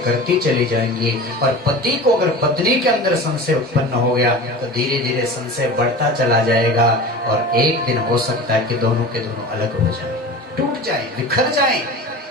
करती चली जाएंगी और पति को अगर पत्नी के अंदर संशय उत्पन्न हो गया तो धीरे धीरे संशय बढ़ता चला जाएगा और एक दिन हो सकता है कि दोनों के दोनों अलग हो जाए, टूट जाए, बिखर जाए,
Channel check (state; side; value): normal; both; correlation 0.34